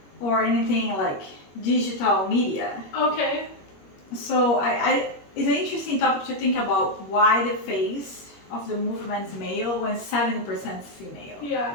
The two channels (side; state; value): right; late; 21 ms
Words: anything like digital media. Okay. So it's an interesting topic to think about why the face of the movement is male when 70% is female. Yeah.